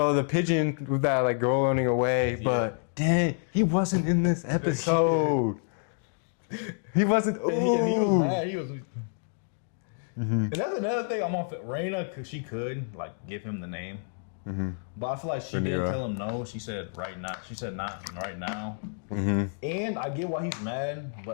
pigeon with that like girl running away, but dang, he wasn't in this episode. He wasn't. And he was mad. He was. And that's another thing I'm on Rhaena, because she could like give him the name. But I feel like she didn't Yeah. tell him no. She said right now. She said not right now. And I get why he's mad,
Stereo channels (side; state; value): right; silent; 59 dB below the other